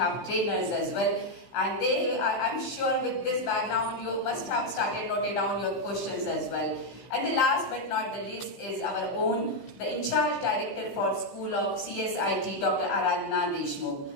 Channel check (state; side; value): late; right; 16 ms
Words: trainers as well. And they are, I'm sure with this background, you must have started noting down your questions as well. And the last but not the least is our own, the in-charge director for School of CSIT, Dr. Aradhana Deshmukh.